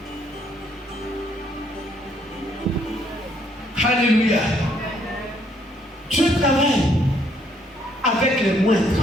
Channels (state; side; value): normal; both; correlation 0.68